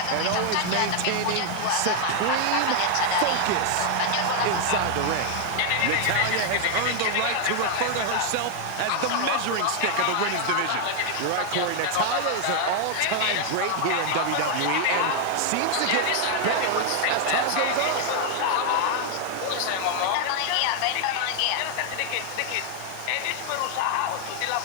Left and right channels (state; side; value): different; both; correlation 0.00